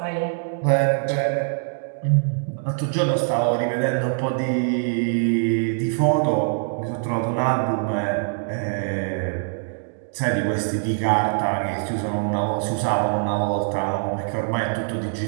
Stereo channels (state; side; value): silent; left; digital silence